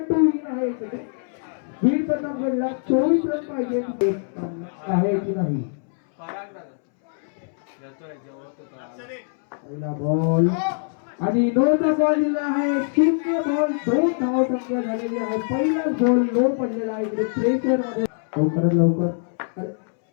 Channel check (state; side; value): silent; right; 63 dB below the other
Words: आहे इकडे बीड पण नंबरला 24 रन पाहिजे आहे की नाही पहिला बॉल आणि नोचा बॉल दिला आहे 0 बॉल 2 धाव संख्या झालेली आहे पहिला बॉल लो पडलेला आहे इकडे प्रेशर मध्ये लवकर